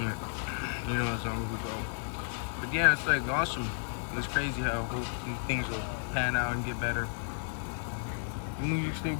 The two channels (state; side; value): silent; right; digital silence